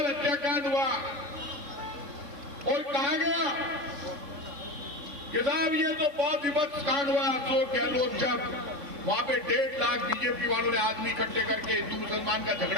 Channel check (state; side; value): late; left; 3.5 ms